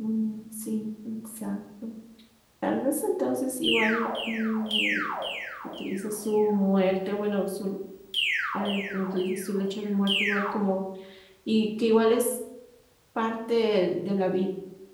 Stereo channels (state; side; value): identical; both; correlation 1.00